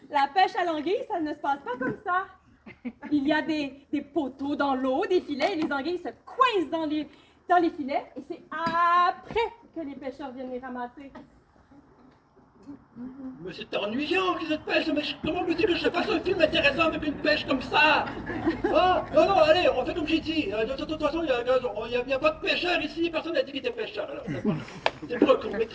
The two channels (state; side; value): identical; both; correlation 1.00